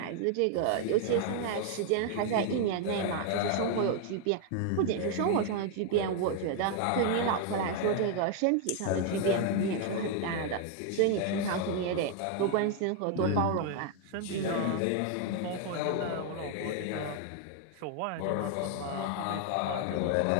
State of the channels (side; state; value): both; different; correlation 0.00